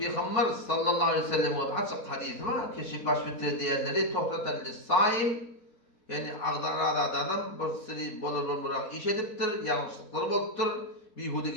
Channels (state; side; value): late; right; 4.2 ms